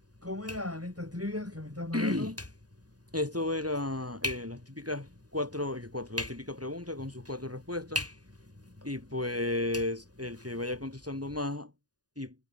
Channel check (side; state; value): left; late; 0.68 ms